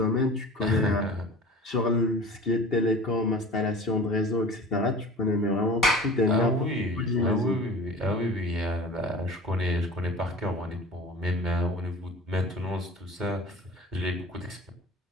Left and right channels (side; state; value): both; normal; correlation 0.39